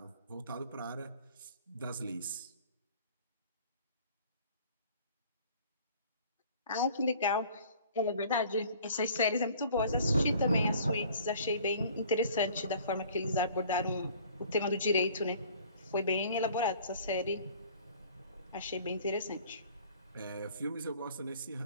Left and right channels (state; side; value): inverted; both; correlation -0.52